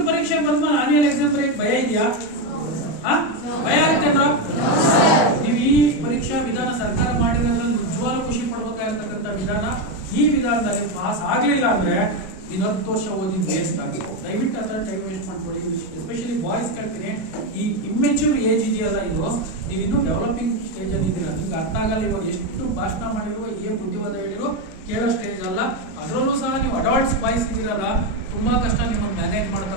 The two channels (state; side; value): late; right; 37 ms